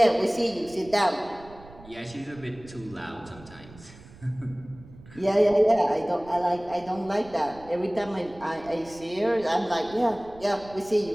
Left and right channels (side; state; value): right; noise; rumble, 21 dB below the sound